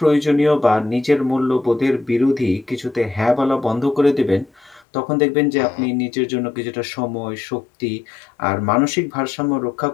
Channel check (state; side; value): drops out; right; at 4.9 s